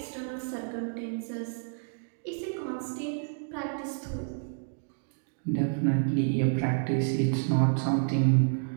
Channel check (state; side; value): silent; left; digital silence